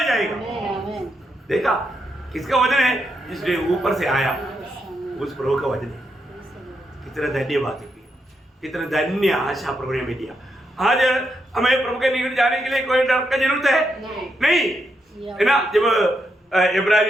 जाएगा। देखा, किसका वजन है? जिसने ऊपर से आया, उस प्रभु का वजन है। कितना धन्यवाद है, कितना धन्य आशा प्रभु ने हमें दिया। आज हमें प्रभु के निकट जाने के लिए कोई डर का जरूरत है? नहीं है ना। जब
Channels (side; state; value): both; normal; correlation 0.82